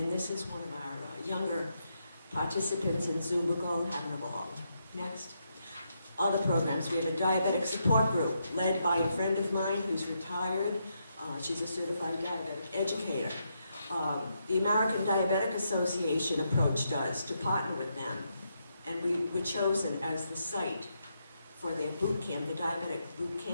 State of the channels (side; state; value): both; inverted; correlation -0.80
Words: this is one of our younger participants in Zubago having a ball. Next. Other programs, we have a diabetic support group led by a friend of mine who's retired. She's a certified diabetic educator. The American Diabetic Association approached us to partner with them, and we were chosen as the site for their boot camp, the diabetic boot